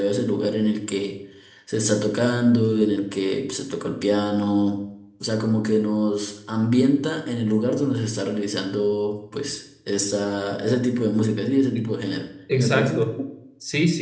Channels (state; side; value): identical; both; correlation 1.00